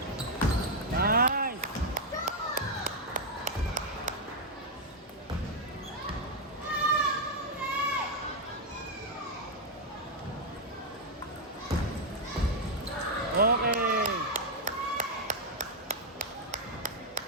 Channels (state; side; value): normal; both; correlation 0.00